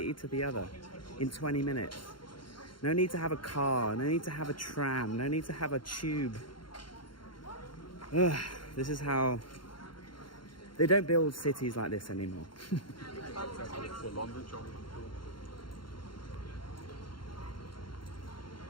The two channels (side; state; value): right; late; 0.73 ms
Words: to the other, in 20 minutes. No need to have a car, no need to have a tram, no need to have a tube. Ugh, this is how... They don't build cities like this anymore.